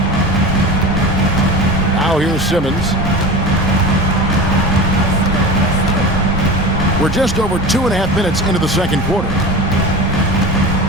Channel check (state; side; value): normal; both; correlation 0.31